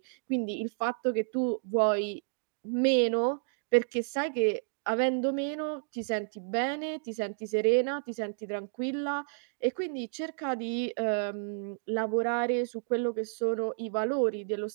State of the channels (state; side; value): silent; left; digital silence